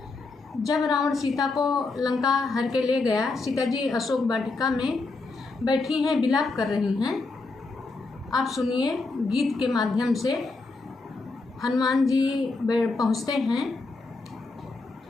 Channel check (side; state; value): right; quieter; 3.6 dB